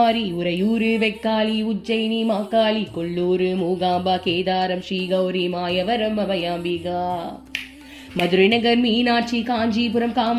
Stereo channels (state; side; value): identical; both; correlation 1.00